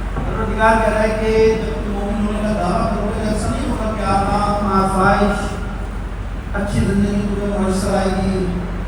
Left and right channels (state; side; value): identical; both; correlation 1.00